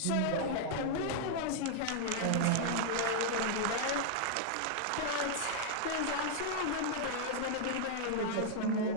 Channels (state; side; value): different; both; correlation -0.01